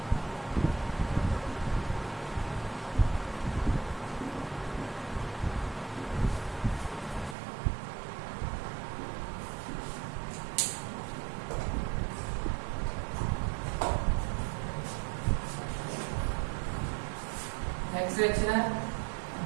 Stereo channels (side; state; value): left; drops out; at 7.4 s